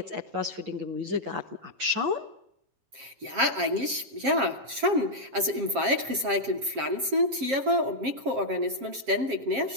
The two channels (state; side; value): late; left; 7.5 ms